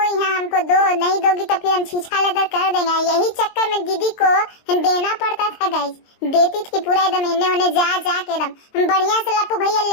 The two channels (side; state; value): right; late; 22 ms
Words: यहाँ हमको दो, नहीं दोगी तो फिर हम छीछा लेदर कर देंगे। यही चक्कर में दीदी को देना पड़ता था गाइस, देती थी पूरा एकदम इन्हें उन्हें जा के एकदम बढ़िया से लप्पू भैया